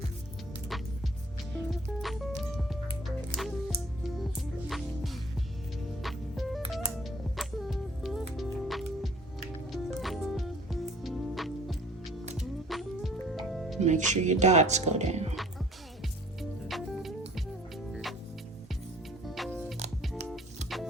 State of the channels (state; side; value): normal; both; correlation 0.53